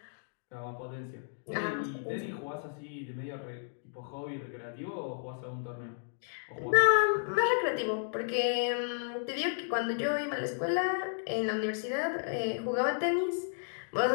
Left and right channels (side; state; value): right; silent; digital silence